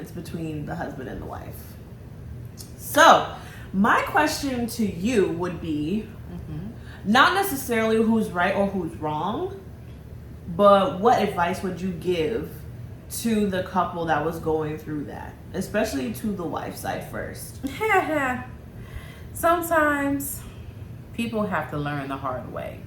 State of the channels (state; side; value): identical; both; correlation 1.00